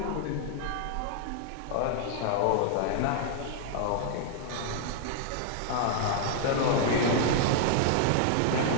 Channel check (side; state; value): both; different; correlation -0.01